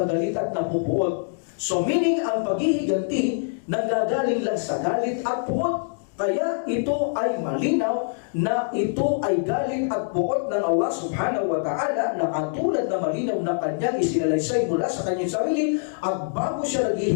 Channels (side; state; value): right; silent; digital silence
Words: galit at napupuot? So meaning, ang paghihiganti, nagagaling lang sa galit at puot. Kaya ito ay malinaw na ito ay galit at puot ng Allah subhanahu wa ta'ala na katulad na malinaw na kanyang isinalaysay mula sa kanyang sarili at bago siya